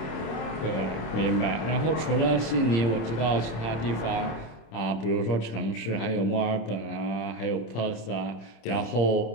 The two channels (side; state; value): right; late; 26 ms